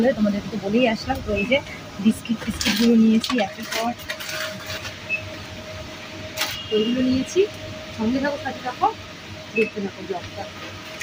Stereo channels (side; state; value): both; identical; correlation 1.00